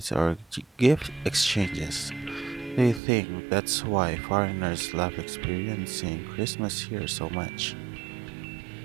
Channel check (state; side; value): drops out; left; at 3.0 s